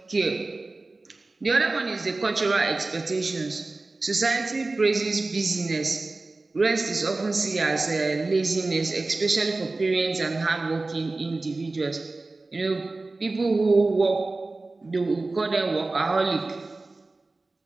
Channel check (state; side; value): quieter; left; 3.3 dB